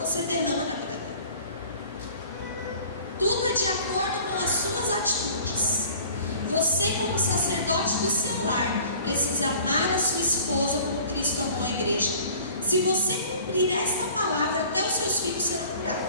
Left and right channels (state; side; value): inverted; both; correlation -0.48